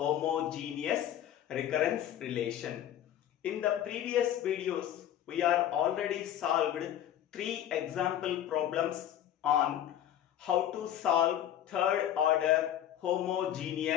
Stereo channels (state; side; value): quieter; right; 11.1 dB